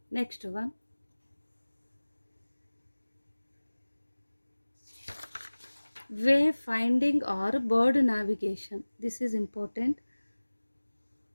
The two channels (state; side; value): inverted; both; correlation -1.00